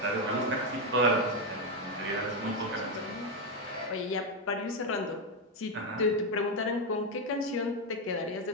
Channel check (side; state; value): both; normal; correlation 0.06